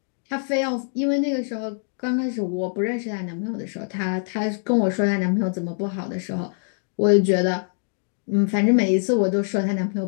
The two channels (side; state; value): right; silent; 63 dB below the other